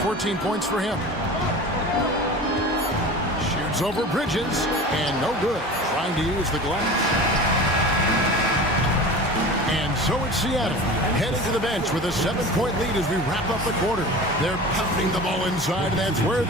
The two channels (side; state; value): both; normal; correlation 0.35